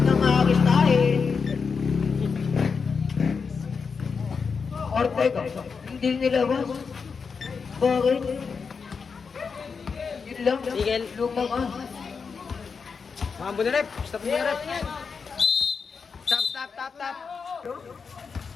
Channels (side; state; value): right; quieter; 5.5 dB